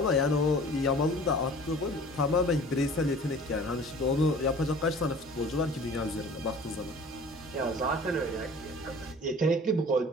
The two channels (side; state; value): both; normal; correlation 0.45